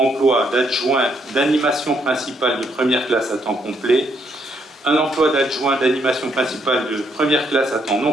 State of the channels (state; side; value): normal; both; correlation 0.73